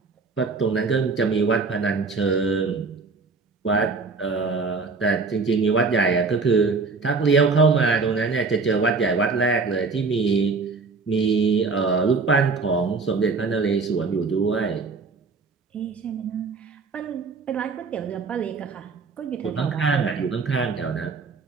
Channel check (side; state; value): left; quieter; 4.4 dB